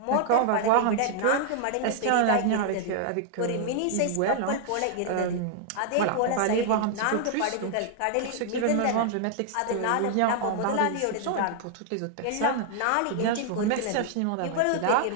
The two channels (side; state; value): both; different; correlation 0.00